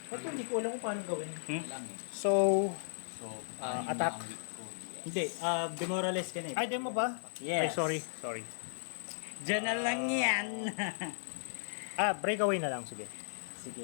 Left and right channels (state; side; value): silent; right; digital silence